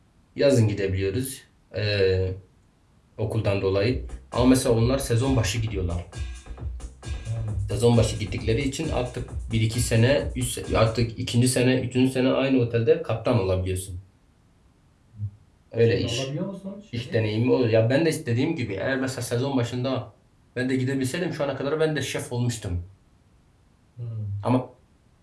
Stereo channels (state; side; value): identical; both; correlation 1.00